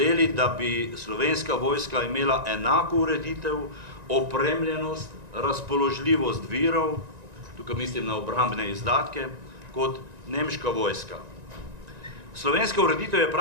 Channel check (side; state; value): left; late; 1.9 ms